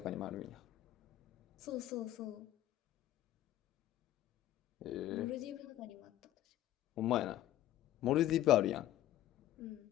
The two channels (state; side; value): quieter; right; 13.5 dB